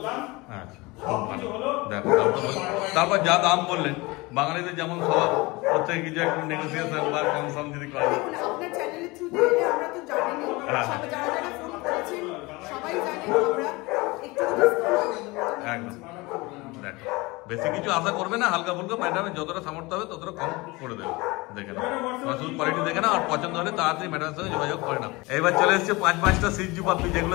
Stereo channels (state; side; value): quieter; right; 23.5 dB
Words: আচ্ছা, ভালো। দেখো তারপর যা দাম বললেন, বাঙালিদের যেমন স্বভাব, প্রত্যেকে কিছু একটু নেগোসিয়েশন বা কম সম যদি করে। আপনার চ্যানেলের থ্রুতে এলে আমরা তো জানি, যারা যারা ফোন করেছেন সবাই জানে, আমরা একটু ডিসকাউন্ট করে দেবো। একদম, দেখো বেশি কিছু আশা করবে না, হালকা ফুলকা ম্যাডামের যতটা সামর্থ্য হবে ততটা কম করে দেবে। দেখে নাও, শুধু কোয়ালিটি দেখে নাও, আর পছন্দ হলে তাড়াতাড়ি ম্যাডামের সঙ্গে যোগাযোগ করে নাও। এইবার চলে এসছে 5-5টা সিজু পাপি, যেগুলো